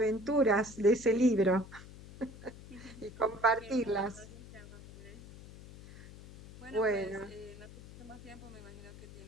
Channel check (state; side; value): noise; left; hum, 16 dB below the sound